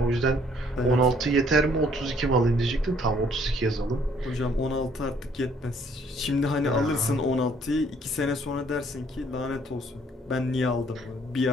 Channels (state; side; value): normal; both; correlation 0.62